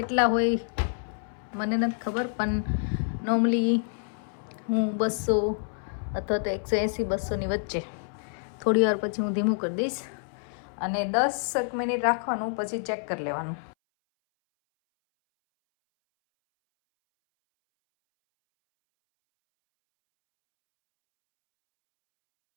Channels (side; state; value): right; silent; 59 dB below the other